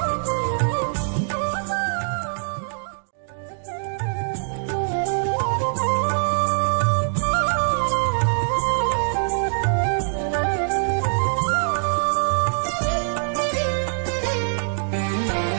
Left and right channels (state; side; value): silent; left; digital silence